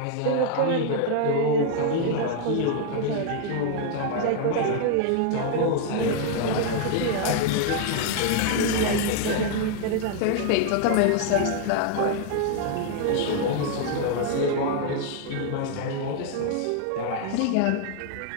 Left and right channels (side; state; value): both; different; correlation 0.00